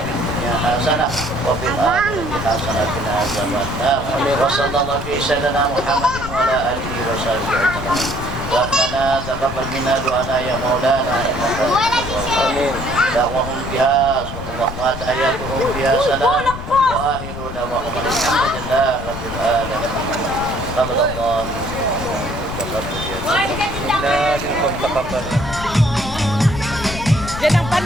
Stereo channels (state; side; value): noise; left; rumble, 9 dB below the sound